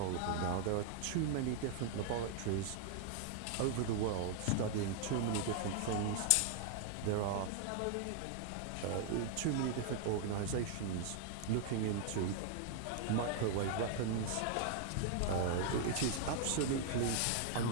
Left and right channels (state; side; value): different; both; correlation 0.00